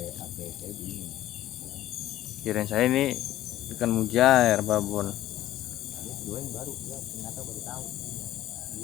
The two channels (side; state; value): right; quieter; 14.0 dB